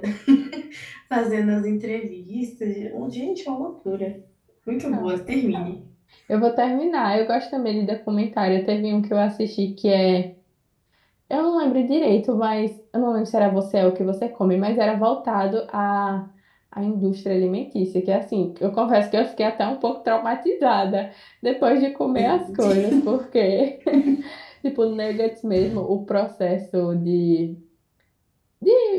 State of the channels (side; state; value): both; identical; correlation 1.00